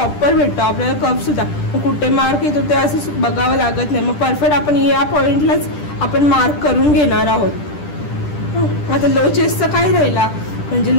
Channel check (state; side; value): late; right; 10 ms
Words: भेटतो, आपल्याला कप सुद्धा कुठे मार्क येतो ते असं बघावं लागत नाही। मग परफेक्ट आपण या पॉईंटलाच आपण मार्क करून घेणार आहोत। आता लो चेस्टचं काय राहिला, म्हणजे